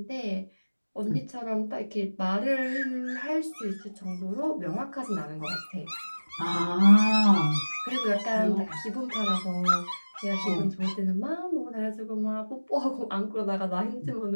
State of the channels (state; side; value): inverted; both; correlation -1.00